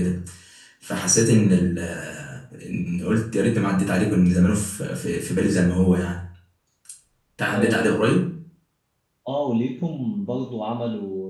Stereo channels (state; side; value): identical; both; correlation 1.00